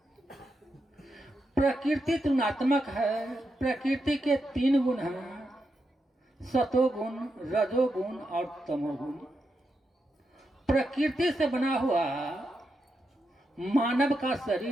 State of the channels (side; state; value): both; normal; correlation 0.85